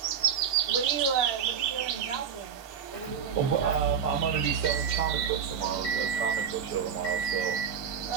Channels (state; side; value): quieter; left; 7.5 dB